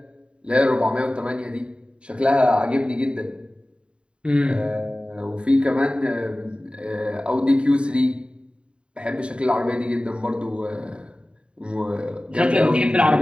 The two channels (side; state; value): left; late; 0.055 ms